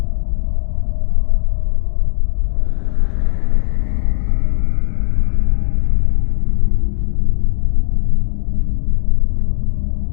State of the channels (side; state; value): right; silent; 68 dB below the other